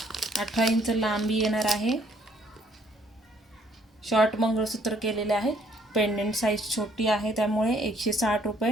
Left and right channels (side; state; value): both; normal; correlation 0.64